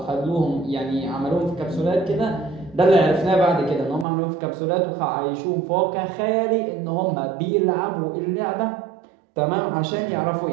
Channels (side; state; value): left; drops out; at 4.0 s